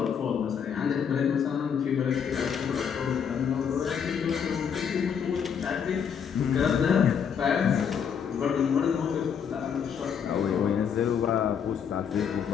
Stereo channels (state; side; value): quieter; right; 7.4 dB